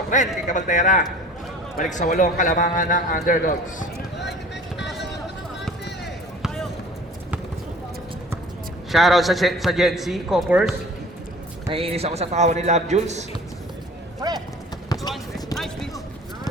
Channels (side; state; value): both; normal; correlation 0.46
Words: rin kay Cabaltera. Balik sa 8 kalamangan ng underdogs. Shoutout sa Gen Z, Coppers. Naiinis ako sa tawa ni Love Jules.